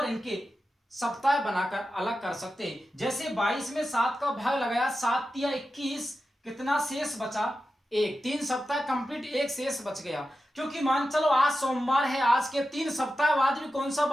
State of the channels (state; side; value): normal; both; correlation 0.91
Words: इनके सप्ताह बनाकर अलग कर सकते हैं। जैसे 22 में 7 का भाग लगाया, 7 या 21, कितना शेष बचा, 1। 3 सप्ताह कंप्लीट, 1 शेष बच गया। क्योंकि मान चलो आज सोमवार है, आज के 3 सप्ताह बाद भी कौन सा